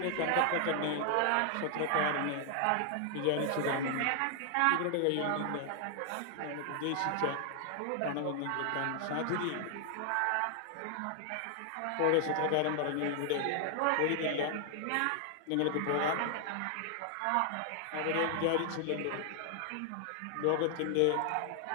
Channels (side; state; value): both; different; correlation 0.00